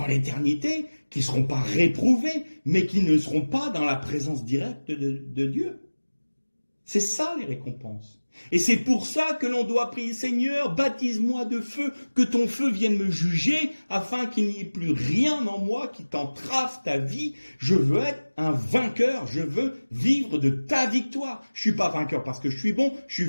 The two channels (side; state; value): both; inverted; correlation -1.00